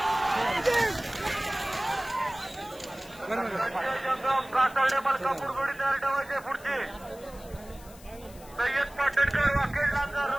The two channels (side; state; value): left; noise; hiss, 21 dB below the sound